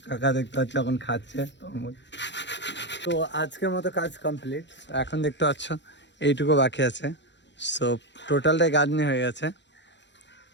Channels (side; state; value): right; late; 0.52 ms